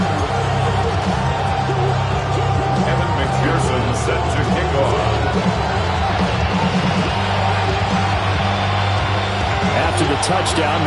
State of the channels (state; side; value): identical; both; correlation 1.00